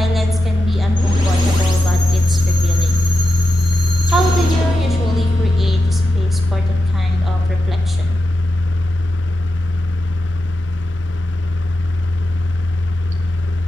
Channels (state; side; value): normal; both; correlation 0.89